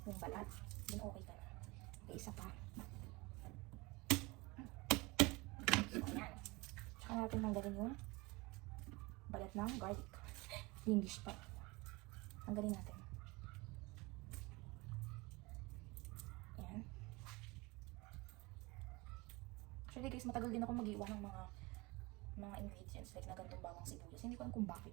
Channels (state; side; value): quieter; left; 23.4 dB